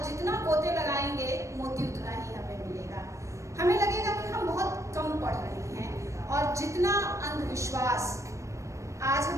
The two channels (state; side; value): late; left; 0.15 ms